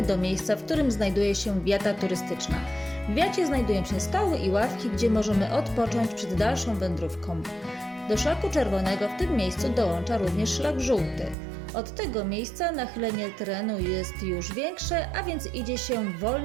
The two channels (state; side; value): drops out; left; at 11.4 s